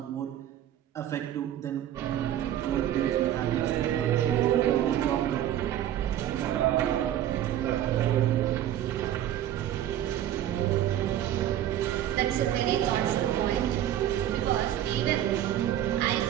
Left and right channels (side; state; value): left; quieter; 11.7 dB